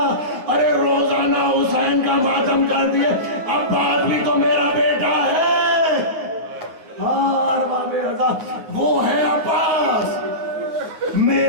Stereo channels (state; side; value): late; left; 9.5 ms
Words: ارے روزانہ حسین کا ماتم کر دیے. عباس بھی تو میرا بیٹا ہے. ارباب رضا وہ ہے عباس.